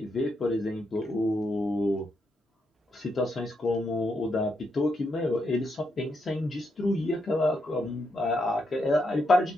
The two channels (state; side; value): normal; both; correlation 0.80